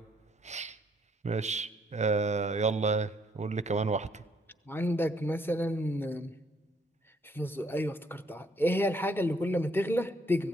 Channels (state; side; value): normal; both; correlation 0.68